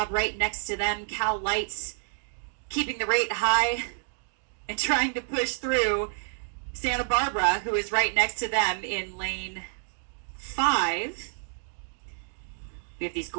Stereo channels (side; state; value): left; silent; digital silence